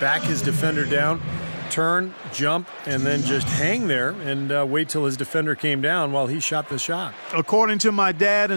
his defender down, turn, jump, and then just hang there and wait till his defender came down while he shot the shot. According to my dad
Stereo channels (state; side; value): inverted; both; correlation -1.00